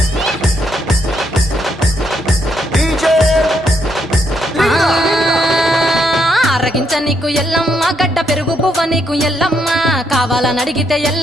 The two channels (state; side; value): normal; both; correlation 0.76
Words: ఆరగించ నీకు ఎల్లమ్మ గడ్డ పెరుగు పువ్వ నీకు ఎల్లమ్మ కావాలని అడిగితే